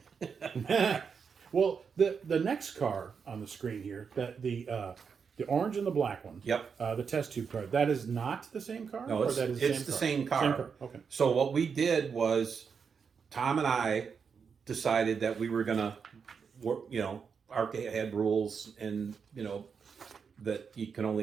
Well, the next car on the screen here, that the orange and the black one. Yep. The test tube car. That is not the same car? No, it's the same car. Same car. Okay. So what we did was Tom and I decided that we were gonna work, ARCA had rules and, that you can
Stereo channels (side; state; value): left; quieter; 6.1 dB